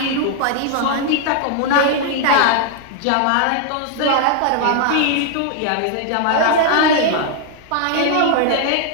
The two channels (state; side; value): different; both; correlation 0.00